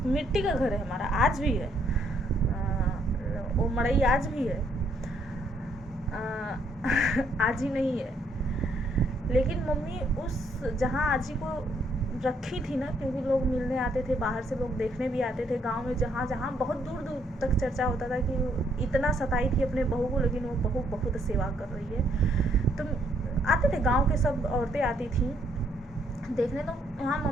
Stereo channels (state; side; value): normal; both; correlation 0.70